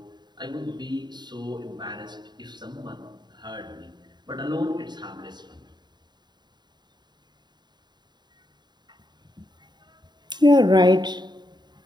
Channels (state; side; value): late; left; 0.21 ms